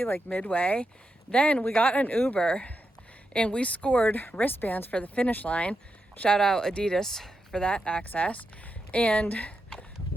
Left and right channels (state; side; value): normal; both; correlation 0.86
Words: midway. Then we got an Uber and we scored wristbands for the finish line. Shout out Adidas for that access. And